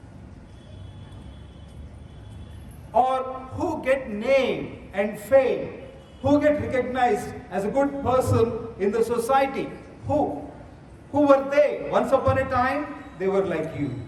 Or who get name and fame? Who get recognized as a good person in the society? Who? Who were they? Once upon a time, they were like you.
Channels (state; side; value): identical; both; correlation 1.00